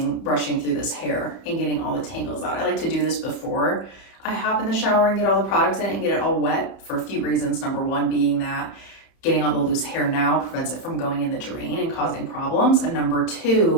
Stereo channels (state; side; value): late; right; 30 ms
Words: brushing through this hair and getting all the tangles out. I like to do this before I hop in the shower and get all the products in it and get it all wet for a few reasons. Number one being that getting all the loose hair now prevents it from going in the drain and causing problems. And number